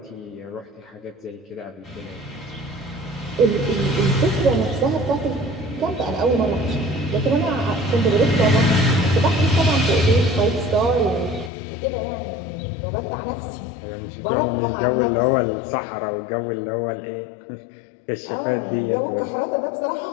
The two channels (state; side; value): drops out; right; at 11.5 s